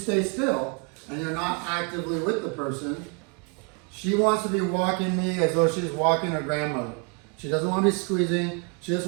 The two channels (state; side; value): quieter; left; 33.0 dB